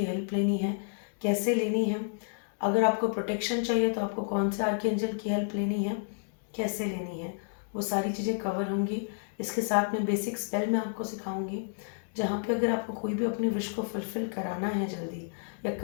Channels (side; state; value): right; silent; digital silence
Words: हेल्प लेनी है, कैसे लेनी है। अगर आपको प्रोटेक्शन चाहिए तो आपको कौन से आर्कएंजल की हेल्प लेनी है, कैसे लेनी है, वो सारी चीज़ें कवर होंगी। इसके साथ में बेसिक स्पेल मैं आपको सिखाऊंगी, जहाँ पे अगर आपको कोई भी अपनी विश को फुलफिल कराना है जल्दी या